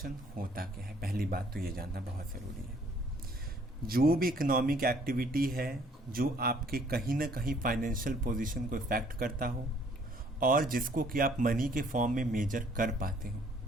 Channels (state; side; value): normal; both; correlation 0.61